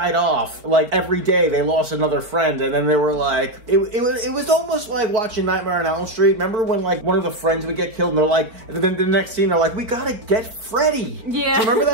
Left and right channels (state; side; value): late; left; 4.3 ms